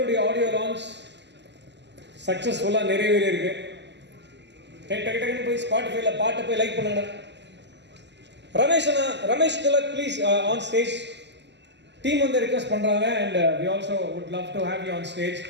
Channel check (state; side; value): late; left; 0.51 ms